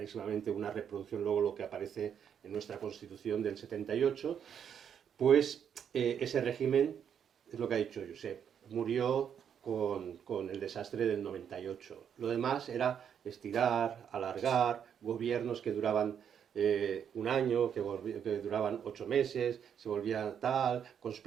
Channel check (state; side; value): quieter; left; 8.3 dB